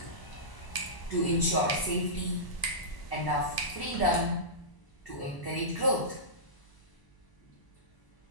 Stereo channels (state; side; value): late; right; 1.0 ms